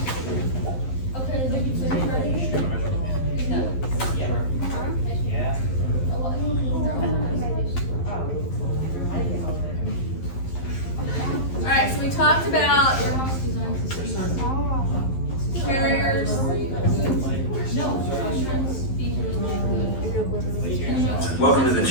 Okay, maybe you say no. Alright, so we talked about carriers. Welcome to the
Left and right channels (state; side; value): late; right; 11 ms